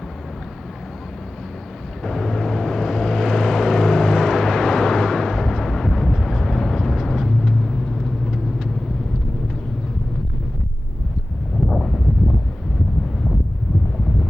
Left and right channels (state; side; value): normal; both; correlation 0.96